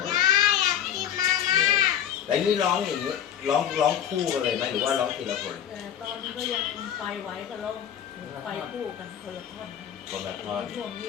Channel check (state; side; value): quieter; right; 9.7 dB